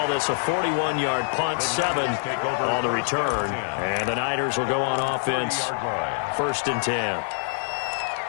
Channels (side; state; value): right; silent; 62 dB below the other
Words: this a 41-yard punt, 7 on the return. And the Niners will go on offense, 1st and 10.